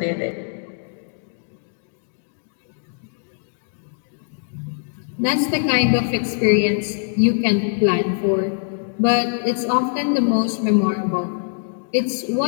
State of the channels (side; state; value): right; silent; digital silence